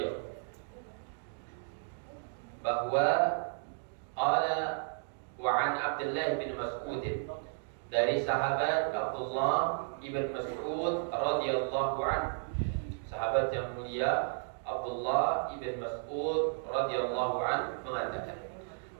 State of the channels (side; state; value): left; silent; digital silence